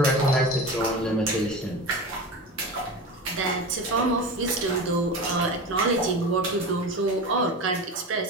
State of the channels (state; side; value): normal; both; correlation 0.28